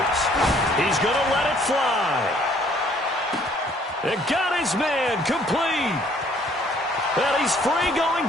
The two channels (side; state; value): both; normal; correlation 0.61